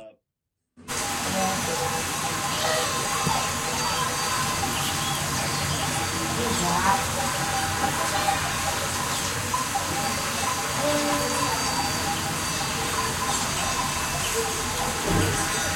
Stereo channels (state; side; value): identical; both; correlation 1.00